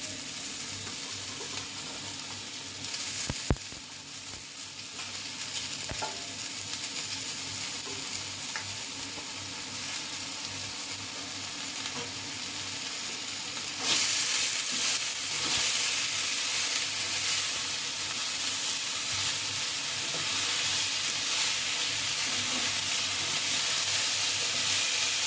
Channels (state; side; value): identical; both; correlation 1.00